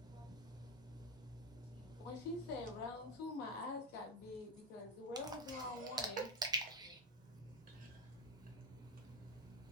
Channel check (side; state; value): both; normal; correlation 0.15